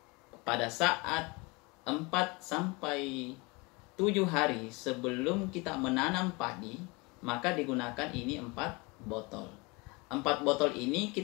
Pada saat 4 sampai 7 hari sebelum kita menanam padi, maka digunakan ini 4 botol. 4 botol ini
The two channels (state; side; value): quieter; right; 26.1 dB